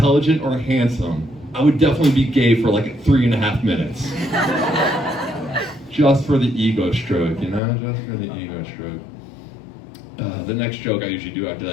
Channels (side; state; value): right; drops out; at 7.6 s